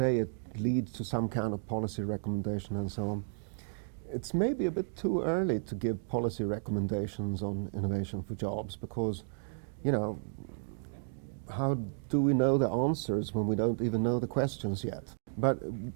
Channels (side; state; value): left; silent; digital silence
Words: it leads to some kind of policy recommendation and so on. It's maybe a bit too early to give policy recommendations on innovation for jobs because, how do we know the answers when we don't even know the questions yet? But